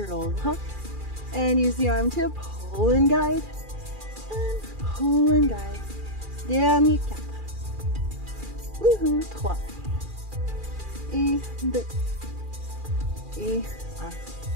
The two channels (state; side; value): late; left; 2.4 ms